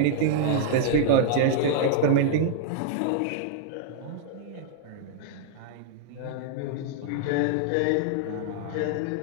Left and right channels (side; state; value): both; different; correlation -0.01